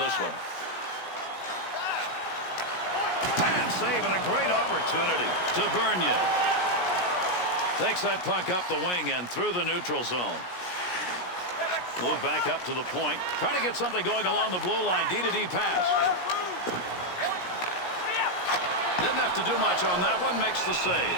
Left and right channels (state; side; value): late; right; 17 ms